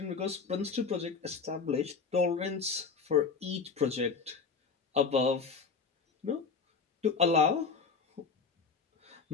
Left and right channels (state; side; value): quieter; right; 5.1 dB